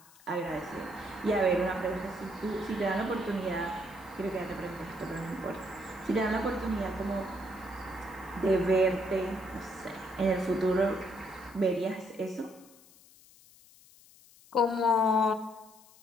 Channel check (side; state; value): left; noise; hiss, 25 dB below the sound